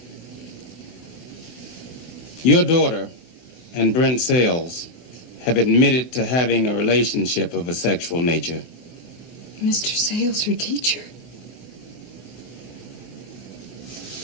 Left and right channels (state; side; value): late; right; 24 ms